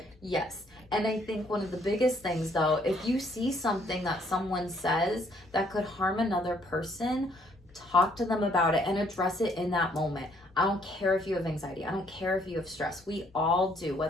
Yes. And I think one of the biggest things, though, if you see something that someone says that could harm another person, talk to them about it and address it in that moment. I don't care if you have anxiety. I don't care if you have stress. We all do,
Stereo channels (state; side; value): normal; both; correlation 0.66